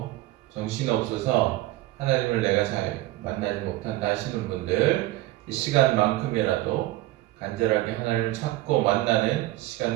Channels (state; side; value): quieter; left; 16.9 dB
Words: 정신없어서 하나님을 내가 잘 만나지 못한다 하시는 분들, 이 시간만큼이라도 간절하게 하나님을 찾고 만나는